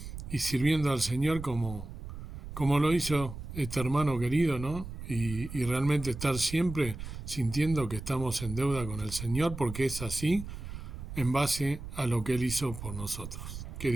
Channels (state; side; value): noise; right; rumble, 9 dB below the sound